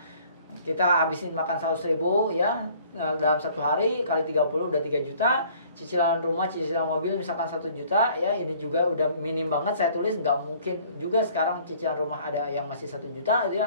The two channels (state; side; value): inverted; both; correlation -0.56